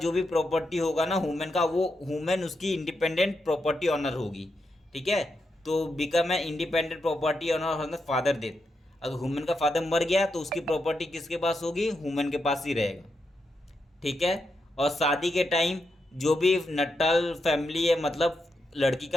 भी प्रॉपर्टी होगा ना वुमेन का, वो वुमेन उसकी इंडिपेंडेंट प्रॉपर्टी ऑनर होगी। ठीक है, तो become a independent property owner father death. अगर वुमेन का फादर मर गया तो उसकी प्रॉपर्टी किसके पास होगी, वुमेन के पास ही रहेगा। ठीक है, और शादी के टाइम जो भी नटाल फैमिली है, मतलब लड़की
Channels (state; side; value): normal; both; correlation 0.84